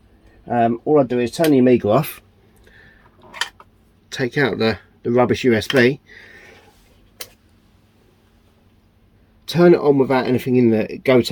all I do is turn the Amiga off, take out the rubbish USB, turn it on without anything in the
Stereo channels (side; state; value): both; identical; correlation 1.00